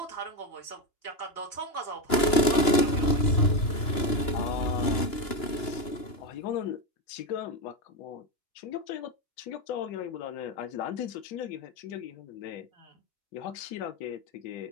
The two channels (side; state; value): right; late; 2.9 ms